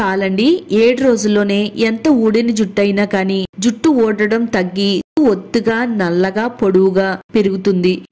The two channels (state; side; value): identical; both; correlation 1.00